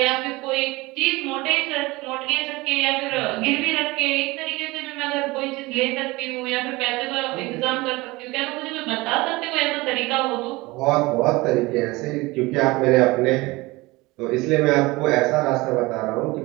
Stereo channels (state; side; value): quieter; left; 21.9 dB